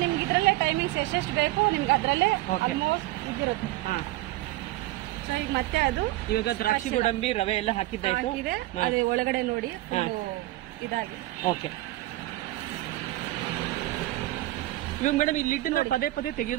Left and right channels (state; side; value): quieter; left; 17.5 dB